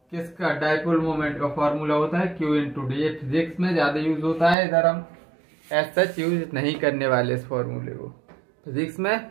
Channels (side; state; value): left; drops out; at 4.5 s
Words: किसका, डाइपोल मोमेंट का फॉर्मूला होता है क्यू इंटू डी। ये फिजिक्स में ज्यादा यूज होता है, इधर हम एज सच यूज नहीं करने वाले इस फॉर्मूले को। फिजिक्स में